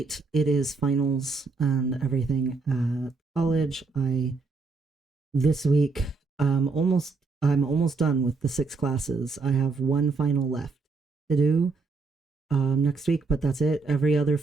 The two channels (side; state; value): left; quieter; 4.2 dB